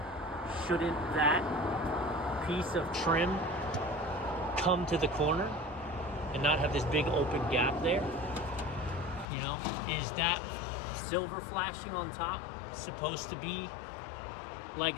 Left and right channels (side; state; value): right; drops out; at 9.2 s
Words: Shouldn't that piece of trim come to the corner and not have this big open gap there? You know, is that silver flashing on top supposed to be